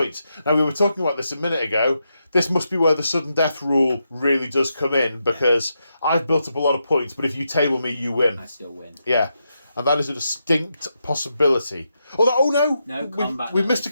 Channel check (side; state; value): both; inverted; correlation -0.84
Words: Now, we were talking about this a minute ago. This must be where the sudden death rule really does come in, because I've built up a lot of points, but if you table me, you win. I still win. Yeah. And that is a distinct possibility. No, combat. We missed a